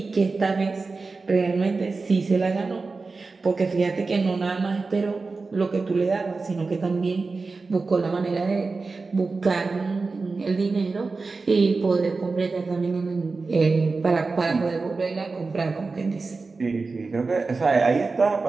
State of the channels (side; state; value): left; quieter; 4.0 dB